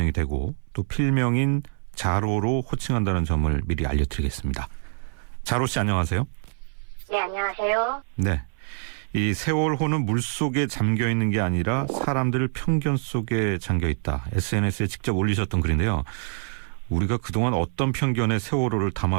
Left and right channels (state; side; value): silent; left; 62 dB below the other